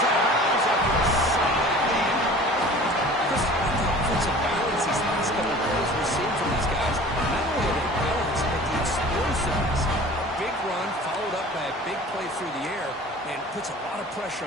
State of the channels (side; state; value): both; normal; correlation 0.44